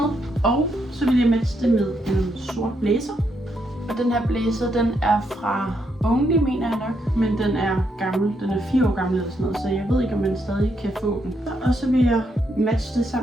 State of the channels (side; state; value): both; normal; correlation 0.77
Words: Og så vil jeg matche det med en sort blazer. Og den her blazer, den er fra Only, mener jeg nok. Men den er gammel. Den er 4 år gammel eller sådan noget. Så jeg ved ikke, om man stadig kan få den. Og så vil jeg matche det